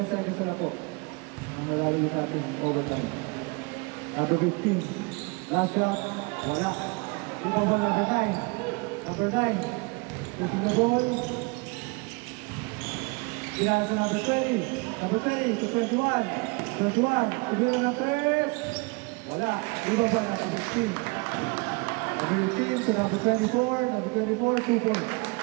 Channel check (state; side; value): quieter; left; 29.0 dB